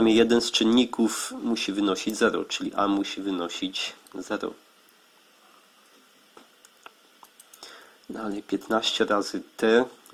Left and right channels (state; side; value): identical; both; correlation 1.00